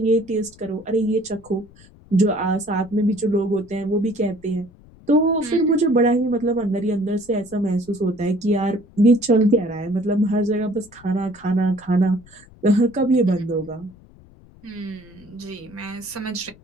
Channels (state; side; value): noise; left; rumble, 24 dB below the sound